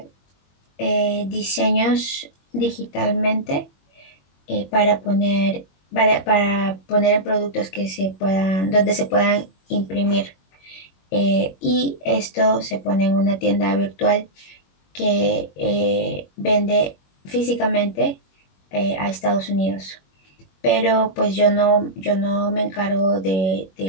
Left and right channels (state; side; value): late; right; 21 ms